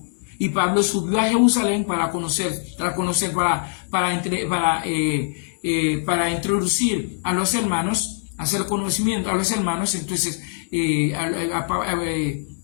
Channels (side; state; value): right; silent; 64 dB below the other